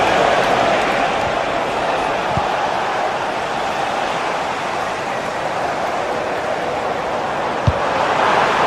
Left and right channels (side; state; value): both; identical; correlation 1.00